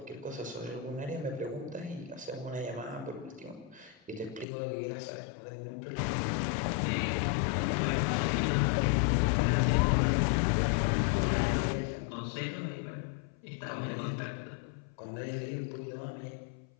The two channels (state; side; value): drops out; right; at 4.5 s